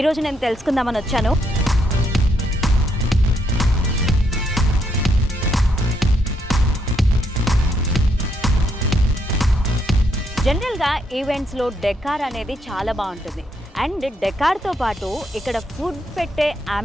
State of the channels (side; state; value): both; normal; correlation 0.75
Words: ఈరోజు నేను తెలుసుకుందామని వచ్చాను. జనరల్గా ఈవెంట్స్లో డెకార్ అనేది చాలా బాగుంటుంది. అండ్ డెకార్తో పాటు ఇక్కడ ఫుడ్ పెట్టే